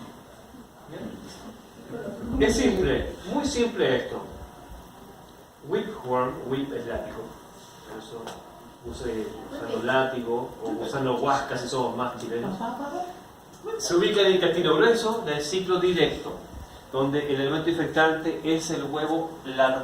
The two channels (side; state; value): both; identical; correlation 1.00